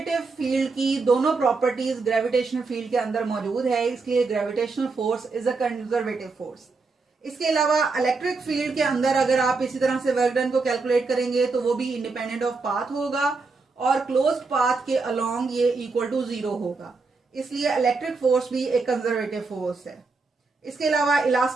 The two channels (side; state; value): left; quieter; 4.1 dB